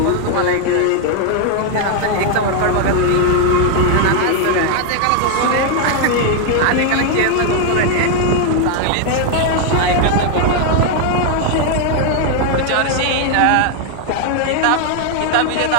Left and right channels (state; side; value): different; both; correlation 0.01